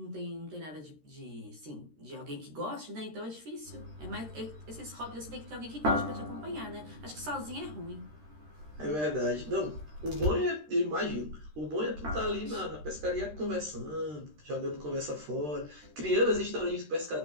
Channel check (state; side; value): late; left; 13 ms